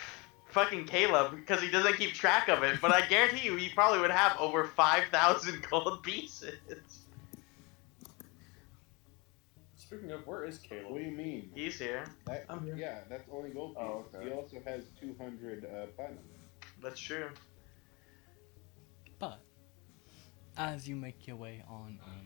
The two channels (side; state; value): right; quieter; 27.7 dB